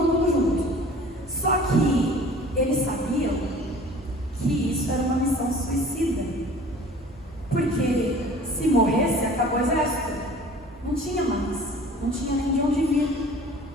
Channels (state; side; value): normal; both; correlation 0.46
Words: mundo junto. Só que eles sabiam que isso era uma missão suicida, porque se morresse, acabou o exército, não tinha mais, não tinha nem de onde vir.